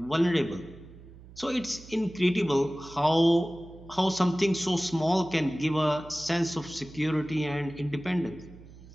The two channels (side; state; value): right; noise; hum, 19 dB below the sound